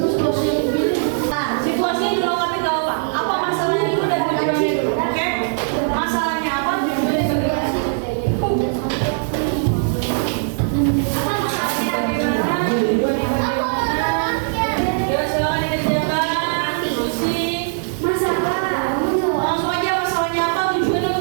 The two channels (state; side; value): silent; left; digital silence